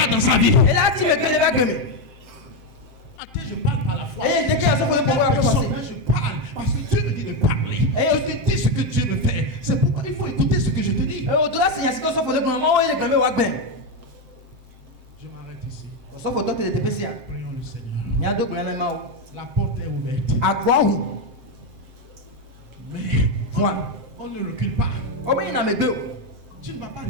dans sa vie. Je parle à la fois. Je parle parce que Dieu me dit de parler. Je te dis ce que Dieu veut faire. C'est pourquoi il faut écouter ce que je te dis. Je m'arrête ici. Prions le Seigneur. La porte est ouverte. Mais on ne recule pas. Tu ne vas pas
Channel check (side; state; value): left; late; 7.6 ms